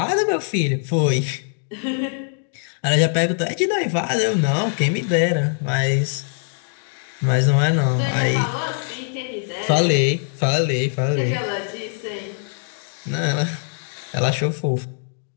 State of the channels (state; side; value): silent; right; digital silence